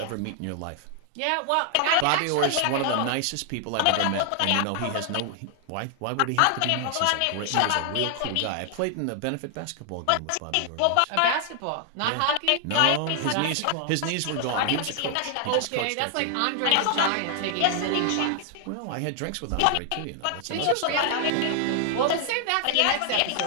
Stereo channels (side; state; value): both; different; correlation 0.00